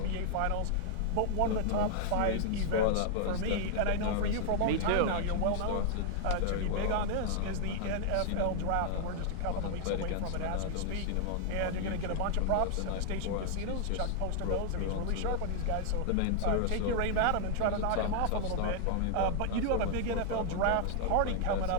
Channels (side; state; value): both; different; correlation 0.00